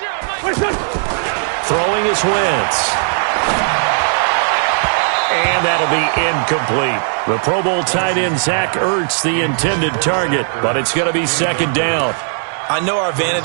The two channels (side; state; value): left; silent; 66 dB below the other